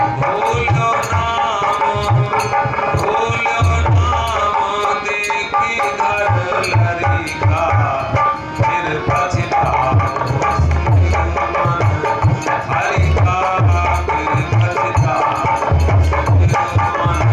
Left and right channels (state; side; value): identical; both; correlation 1.00